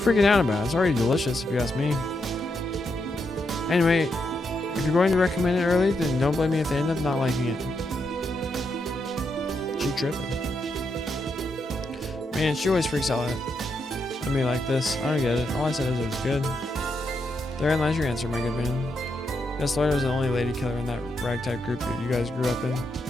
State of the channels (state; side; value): normal; both; correlation 0.81